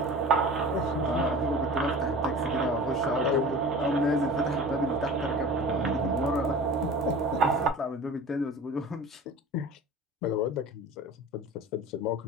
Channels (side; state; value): both; normal; correlation 0.38